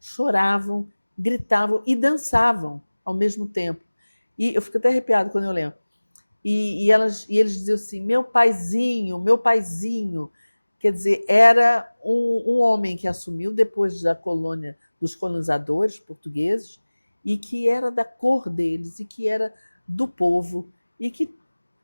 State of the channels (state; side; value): inverted; both; correlation -1.00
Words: gritavam e dançavam ao mesmo tempo. E eu fico até arrepiado quando eu lembro. E eles diziam assim, meu paizinho. Quer dizer, era um homem que assumiu depois da colônia dos colonizadores portugueses e que era da cor deles e que era do povo e que